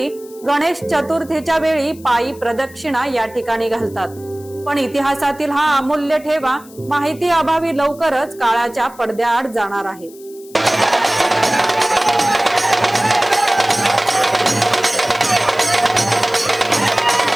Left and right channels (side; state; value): left; noise; hiss, 23 dB below the sound